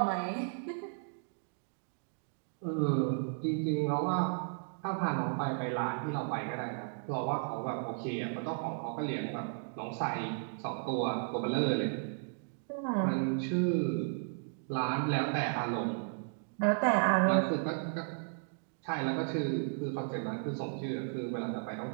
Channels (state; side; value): silent; left; digital silence